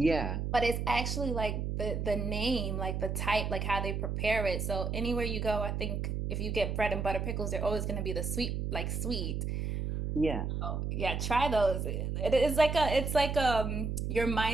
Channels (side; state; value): right; noise; hum, 2 dB below the sound